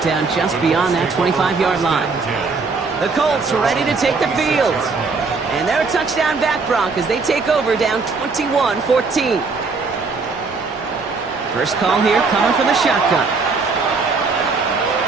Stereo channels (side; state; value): left; quieter; 4.4 dB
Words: down just beyond that 25-yard line. The Colts ready to take the field. And they're a touchdown back, Brock, as they take over down 21-14. First call here coming from the shotgun.